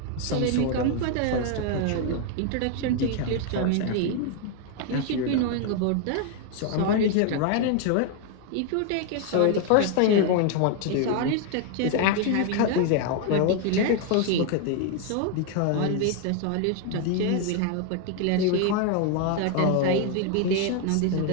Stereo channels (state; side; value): different; both; correlation 0.00